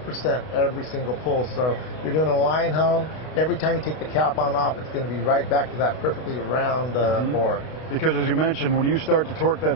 every single pull. So you're doing a line hone, every time you take the cap on off, it's going to be right back to that perfectly round bore. Because as you mentioned, when you start to torque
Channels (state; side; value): late; right; 32 ms